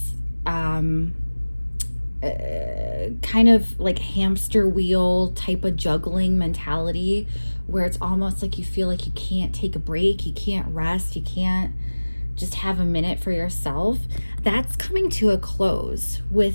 kind of like hamster wheel type of juggling mentality where it's almost like you feel like you can't take a break, you can't rest, you can't just have a minute for yourself. That's coming to a close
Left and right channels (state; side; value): inverted; both; correlation -1.00